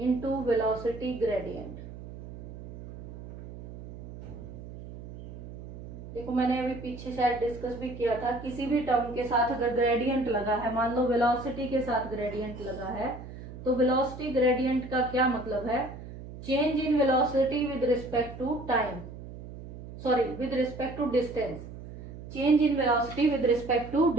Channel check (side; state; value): right; noise; hum, 13 dB below the sound